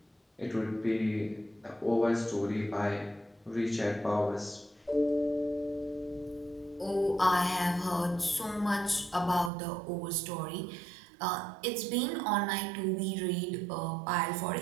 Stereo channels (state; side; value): drops out; left; at 9.5 s